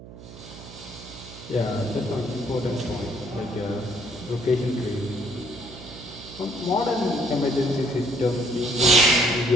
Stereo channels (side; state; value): right; noise; hum, 16 dB below the sound